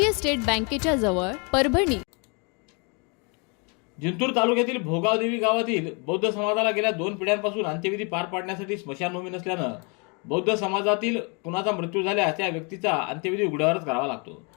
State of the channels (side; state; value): right; quieter; 33.1 dB